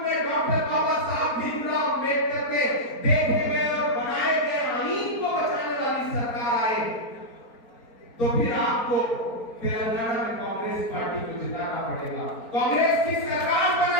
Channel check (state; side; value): late; right; 4.4 ms